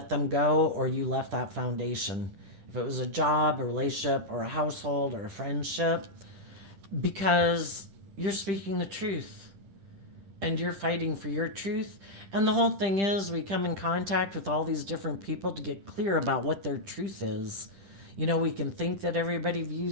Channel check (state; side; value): late; left; 10 ms